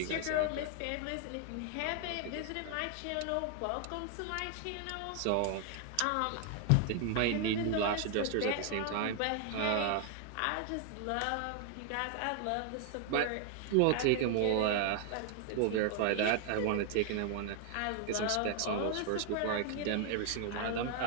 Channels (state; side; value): different; both; correlation 0.00